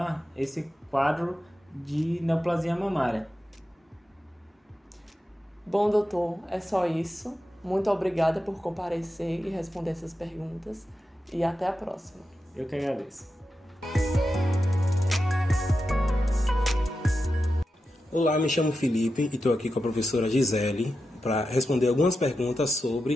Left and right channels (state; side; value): normal; both; correlation 0.90